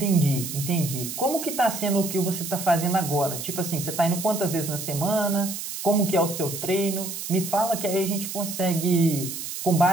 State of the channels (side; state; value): right; noise; hiss, 7 dB below the sound